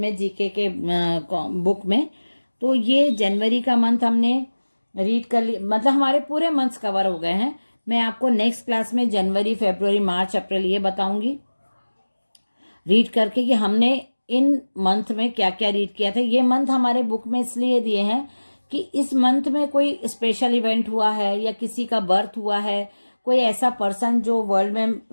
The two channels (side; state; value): both; inverted; correlation -1.00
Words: जीके के बुक में। तो ये जनवरी का मंथ हमने रीड कर लिया, मतलब हमारे पूरे मंथ्स कवर हो गए हैं। मैं आपको नेक्स्ट क्लास में जनवरी, फरवरी, मार्च, अप्रैल ये बताऊंगी रीड करके कि हमने इन मंथ में क्या क्या रीड किया था। ये मंथ हमारे बुक में इसलिए दिए हैं कि इस मंथ में कोई स्पेशल इवेंट हुआ है या किसी का बर्थ हुआ है, कोई ऐसा पर्सन जो वर्ल्ड में